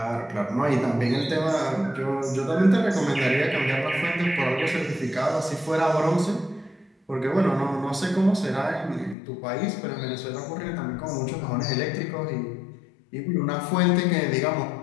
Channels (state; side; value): drops out; right; at 9.2 s